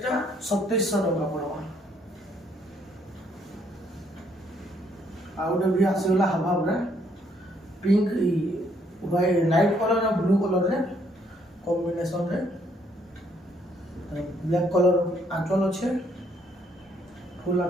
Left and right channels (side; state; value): both; normal; correlation 0.69